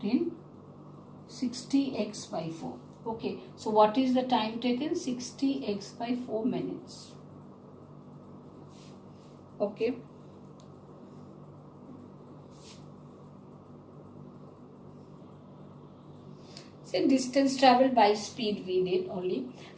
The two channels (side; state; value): both; identical; correlation 1.00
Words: in 60x by 4. Okay, so what is the time taken? 60x by 4 minutes. Okay. So distance traveled by speed we did only.